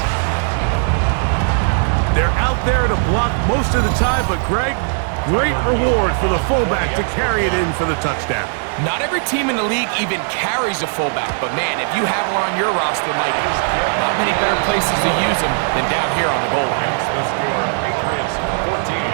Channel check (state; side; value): silent; left; 59 dB below the other